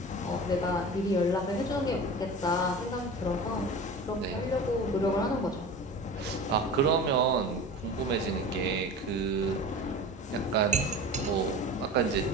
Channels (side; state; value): both; normal; correlation 0.34